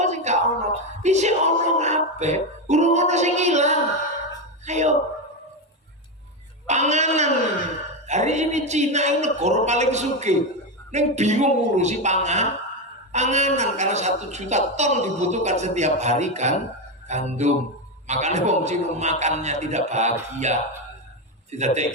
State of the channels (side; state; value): both; normal; correlation 0.11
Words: sing gak ono? Isih ono kabeh. Urung ono sing ilang. Ayo. Panganan. Hari ini Cina ini negara paling sugih. Neng bingung ngurusi panganan karena 1 juta ton dibutuhkan setiap hari kan gandum. Makanya wong Cina makannya tidak bahagia. Tidak